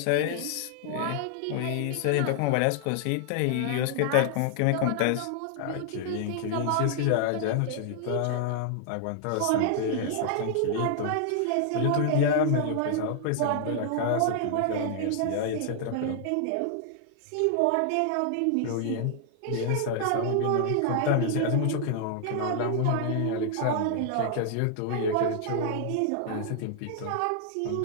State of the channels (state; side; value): different; both; correlation -0.01